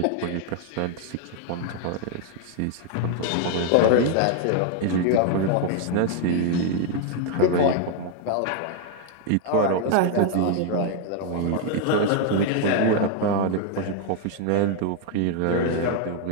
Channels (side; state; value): both; different; correlation 0.00